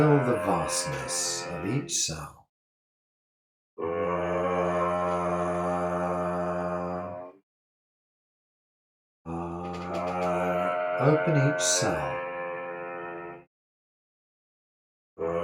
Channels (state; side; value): identical; both; correlation 1.00